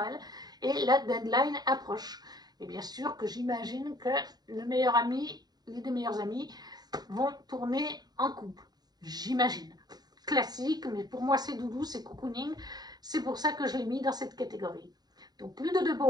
et la deadline approche. Et bien sûr que j'imagine que le meilleur ami, les deux meilleurs amis vont tourner en couple. J'imagine. Classique, mais pour moi c'est doudou, c'est cocooning. C'est pour ça que je l'ai mis dans cette catégorie. Donc Ludo de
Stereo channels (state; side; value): late; left; 0.20 ms